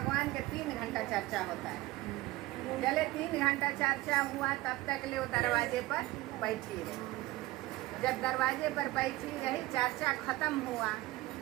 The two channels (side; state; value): left; quieter; 18.9 dB